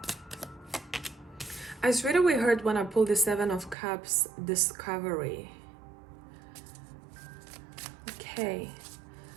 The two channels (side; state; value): left; drops out; at 3.8 s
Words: I straight away heard when I pulled the 7 of Cups, discovery. Okay.